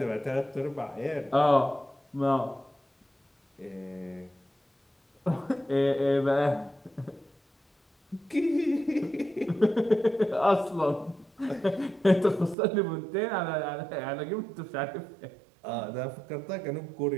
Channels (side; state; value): left; drops out; at 12.6 s